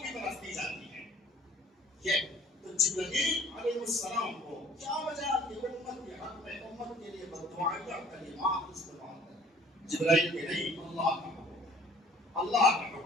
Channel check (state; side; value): normal; both; correlation 0.53